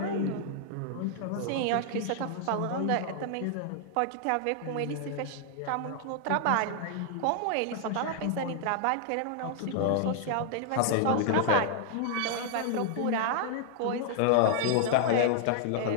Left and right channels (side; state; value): both; different; correlation 0.00